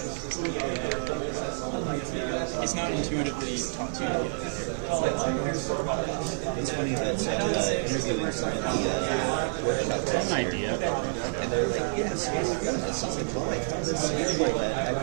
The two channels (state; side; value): silent; left; digital silence